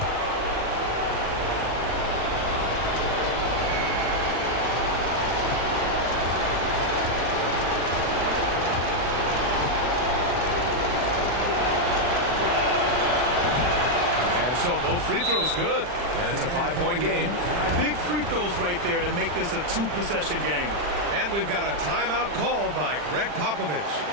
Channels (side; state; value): left; late; 40 ms